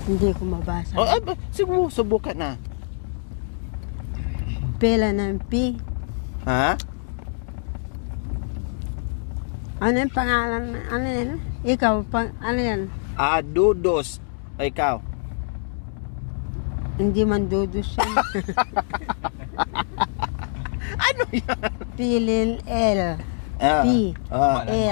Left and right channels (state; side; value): silent; right; digital silence